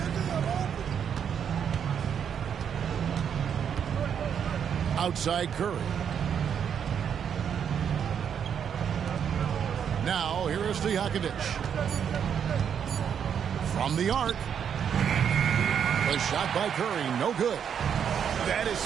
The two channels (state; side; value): quieter; left; 8.0 dB